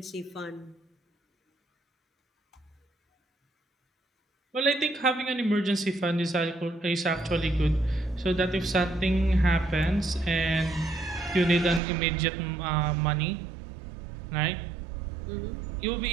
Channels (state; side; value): drops out; left; at 11.8 s